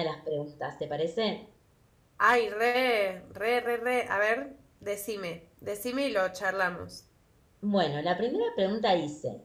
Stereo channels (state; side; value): identical; both; correlation 1.00